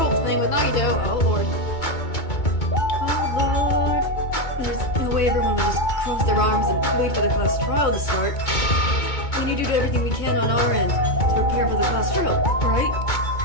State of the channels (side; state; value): right; late; 2.2 ms